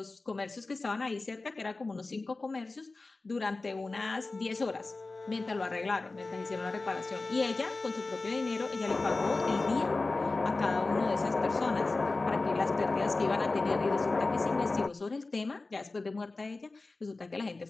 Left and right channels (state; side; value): quieter; right; 3.4 dB